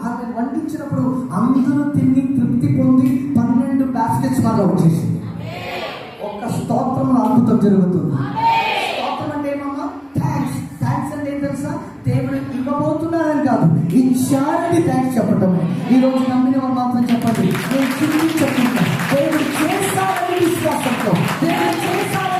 ఆమె వండించినప్పుడు అందరూ తిని తృప్తి పొంది 12 బాస్కెట్స్ మాలో వచ్చేసింది. ఒక్క స్తోత్రంలో అద్భుతం జరుగుతుంది. స్తోత్రం అంటే ఏమమ్మా? థ్యాంక్స్ అంటే ఏం తెలుసా? దేవుడు ఇవ్వబోతున్నారని కాదు, ఇచ్చారని థ్యాంక్స్ చెప్పటం. ఈ రోజు నమ్మిన వాళ్ళు మాత్రం చెప్పండి, నేను చెప్తున్నా. దేవుడు చేస్తారని విశ్వాసంతో, దేవుడు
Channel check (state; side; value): identical; both; correlation 1.00